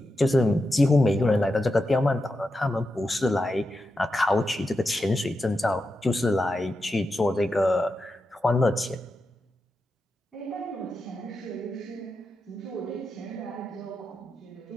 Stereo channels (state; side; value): normal; both; correlation 0.88